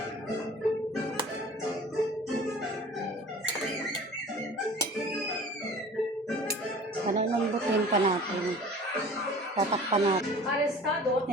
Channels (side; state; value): both; normal; correlation 0.44